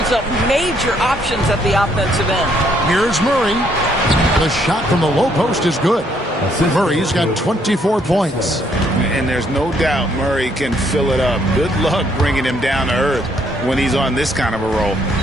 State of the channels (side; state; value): both; normal; correlation 0.69